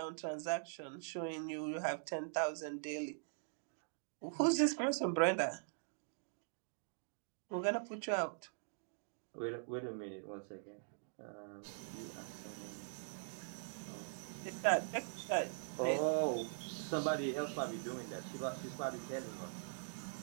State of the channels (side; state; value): left; silent; digital silence